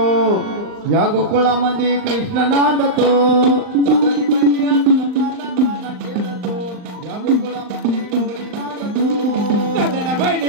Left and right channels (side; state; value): left; late; 39 ms